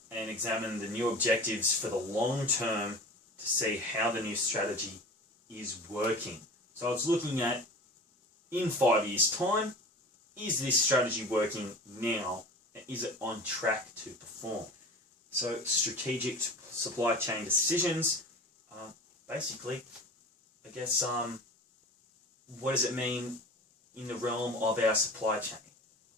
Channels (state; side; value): normal; both; correlation 0.36